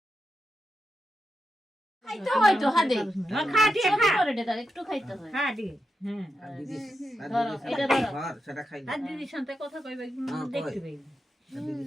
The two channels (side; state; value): both; normal; correlation 0.87